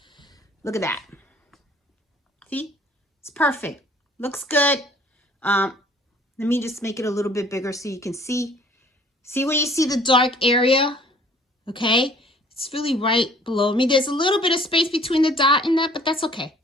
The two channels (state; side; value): normal; both; correlation 0.55